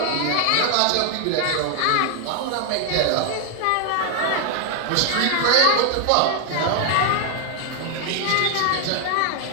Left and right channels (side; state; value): both; different; correlation 0.00